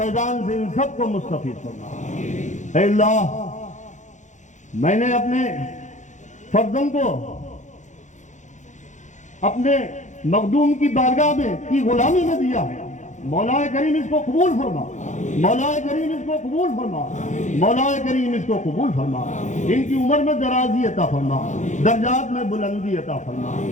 سے ان سب کو مستفید فرما۔ اے اللہ، میں نے اپنے فرزند کو اپنے مخدوم کی بارگاہ میں کی غلامی میں دیا ہے، مولا کریم اس کو قبول فرما، مولا کریم اس کو قبول فرما، مولا کریم اس کو قبول فرما، ان کی عمر میں درازی عطا فرما، درجات میں بلندی عطا فرما۔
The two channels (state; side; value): late; right; 0.35 ms